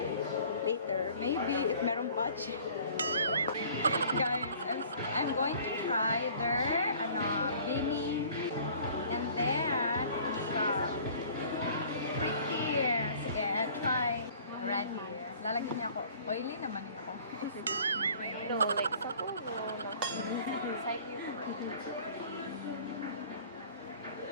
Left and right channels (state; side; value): inverted; both; correlation -0.51